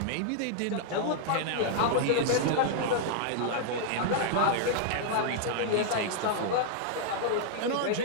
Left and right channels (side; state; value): both; different; correlation -0.01